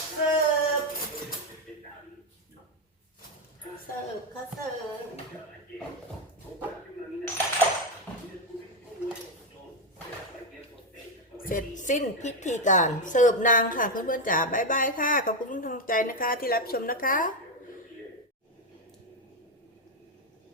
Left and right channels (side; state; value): both; normal; correlation 0.07